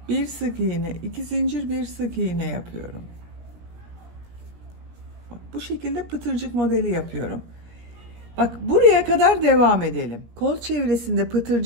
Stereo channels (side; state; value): left; late; 17 ms